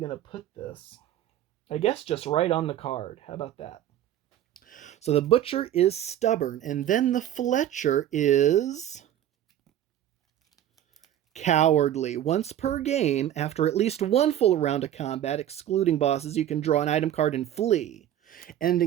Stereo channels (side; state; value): left; quieter; 11.5 dB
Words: to put this? I guess just right on the card. How about that? So the Butcher is stubborn, and then the Fletcher is cowardly. Once per game, after at least 1 full round of combat, excluding bosses, you can draw an item card and flee,